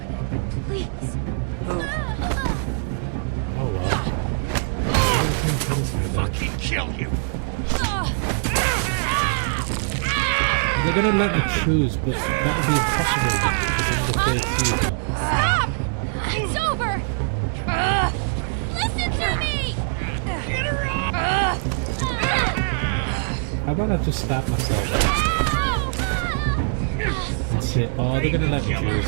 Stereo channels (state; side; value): silent; left; digital silence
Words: Please. Oh well. I think Penny's gonna die. Fucking kill you! They're gonna let me choose, but that would be impossible because I need a third season. Stop! It's over! Listen to me! Get her off! How about I just stab myself and say, oh, they're gonna let me